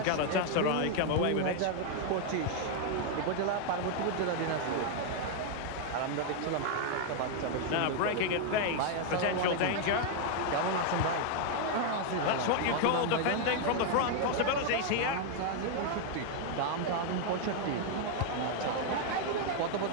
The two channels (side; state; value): both; different; correlation 0.00